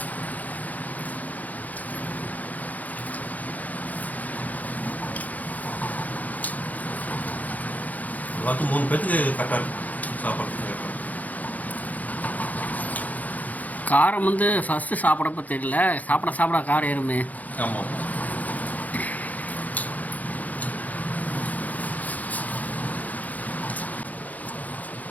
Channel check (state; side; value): late; right; 0.078 ms